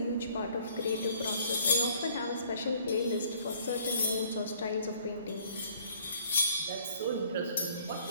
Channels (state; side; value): inverted; both; correlation -0.59